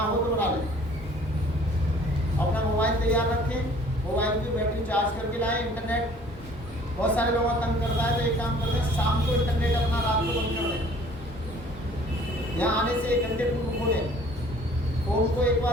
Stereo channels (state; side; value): normal; both; correlation 0.53